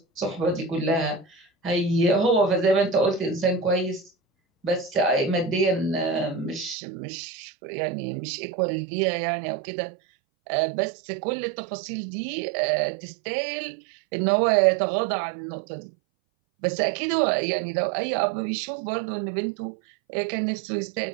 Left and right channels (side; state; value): left; drops out; at 6.8 s